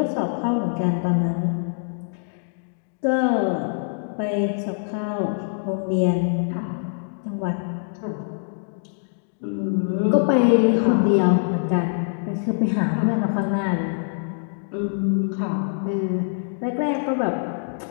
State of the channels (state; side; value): silent; right; digital silence